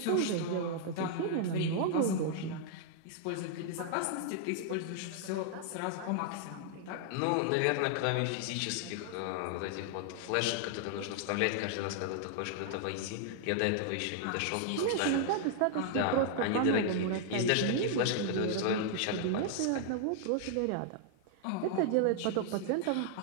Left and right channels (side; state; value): both; different; correlation 0.00